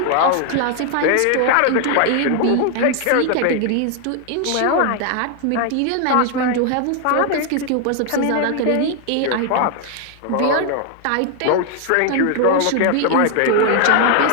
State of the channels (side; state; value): both; different; correlation 0.00